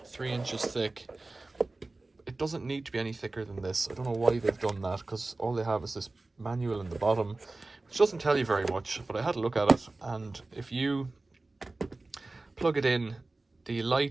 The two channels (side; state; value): left; quieter; 3.2 dB